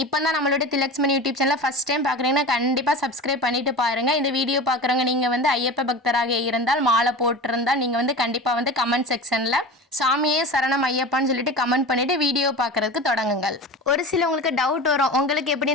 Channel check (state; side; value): normal; both; correlation 0.31